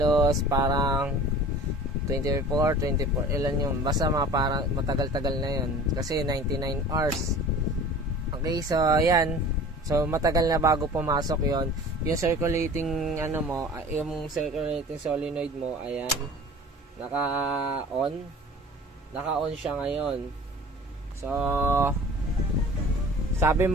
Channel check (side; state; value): both; normal; correlation 0.43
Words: parang 24, ilan yun. Basta parang matagal-tagal na yun. Kasi 99 hours. Okay, so ayan. So matagal na bago pumasok yon. Yung circulating ano mo, yung circulating solenoid mo, ayan. Naka-on siya ngayon. So sabi